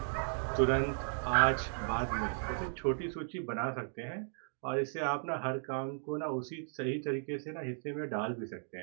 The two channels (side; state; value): left; silent; digital silence